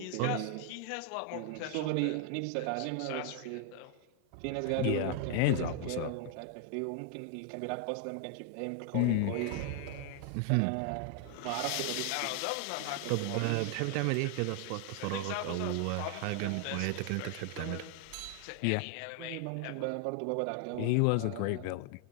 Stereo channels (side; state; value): both; different; correlation 0.00